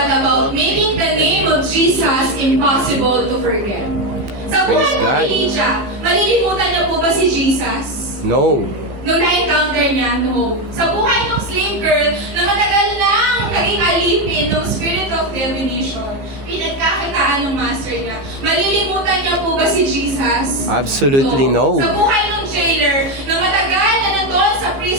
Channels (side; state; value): left; late; 15 ms